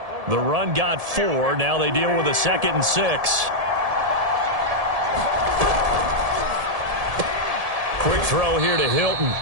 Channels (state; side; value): late; left; 1.7 ms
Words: The run got 4. Now they deal with a 2nd and 6. Quick throw here to Hilton.